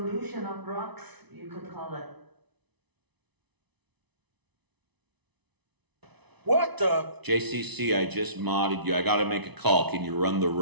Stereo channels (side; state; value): left; late; 0.99 ms